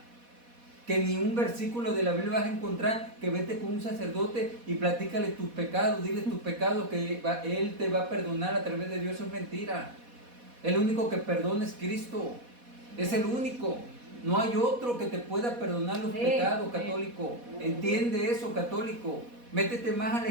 que ni un versículo de la Biblia vas a encontrar que vete con un sacerdote y platícale tus pecados, dile tus pecados, que Él te va a perdonar a través de Dios. Eso es mentira. El único que perdona es Cristo. Es el único. No hay otro que te pueda perdonar los pecados, católico. Entiende eso, católico. Métete más a la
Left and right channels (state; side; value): late; left; 4.1 ms